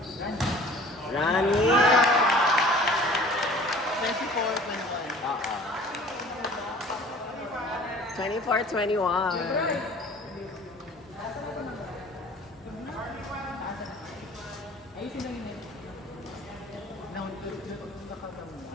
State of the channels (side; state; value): both; normal; correlation 0.48